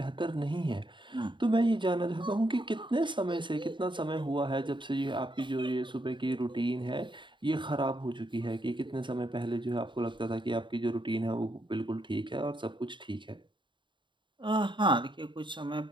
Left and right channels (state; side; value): late; left; 0.23 ms